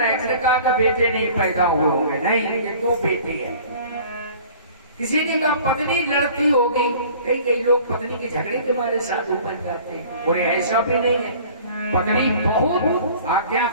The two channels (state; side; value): inverted; both; correlation -0.48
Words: इसने कहा कि बेटे नहीं पैदा हुए होंगे। नहीं, ये तो बेटे है। किसी ने कहा पत्नी लड़ती होगी। कई लोग पत्नी के झगड़े के बारे साधु बन जाते हैं, और ऐसा भी नहीं है। पत्नी बहुत